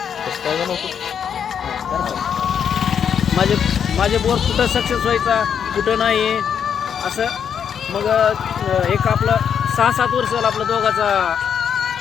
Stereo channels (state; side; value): quieter; right; 7.8 dB